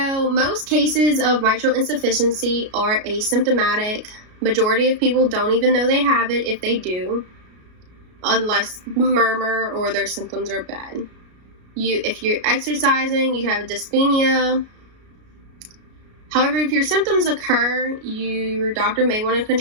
most cases of mitral insufficiency are asymptomatic. Majority of people don't even know they have it if they do, unless murmur or their symptoms are bad. If you're exercising, you have dyspnea. However, if your symptoms occur, your doctor may want to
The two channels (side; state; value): left; late; 33 ms